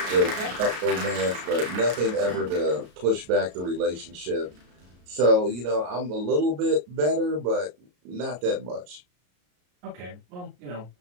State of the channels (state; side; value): late; left; 33 ms